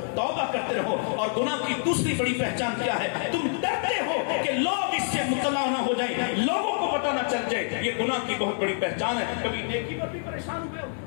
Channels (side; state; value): right; silent; 58 dB below the other